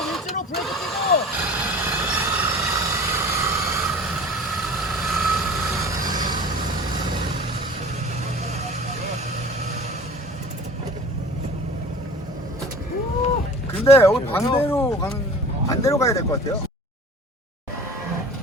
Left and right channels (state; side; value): normal; both; correlation 0.42